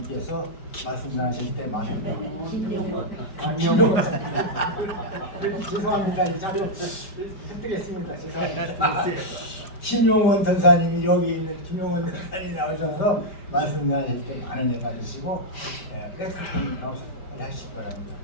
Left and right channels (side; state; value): right; late; 5.0 ms